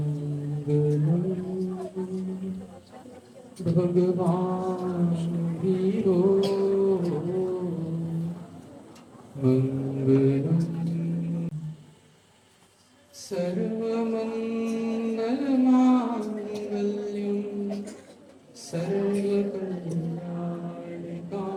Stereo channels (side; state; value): both; identical; correlation 1.00